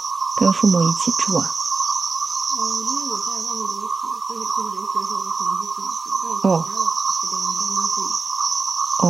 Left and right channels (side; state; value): left; quieter; 4.3 dB